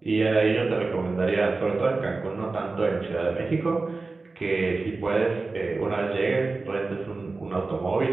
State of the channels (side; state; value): left; quieter; 3.7 dB